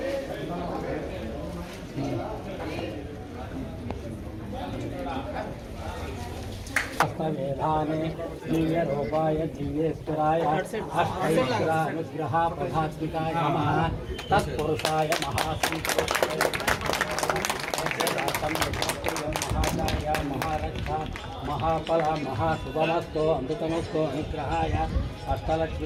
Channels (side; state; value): both; identical; correlation 1.00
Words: मेधाने दिव्यरूपाय दिव्येश्वराय अष्टैश्वरानुग्रह प्रभात्मिकाय नमः तत्पुरुषाय महाचार्य महारक्षा महाफल महाशुभमस्तो अमृतमस्तो अनुग्रहाय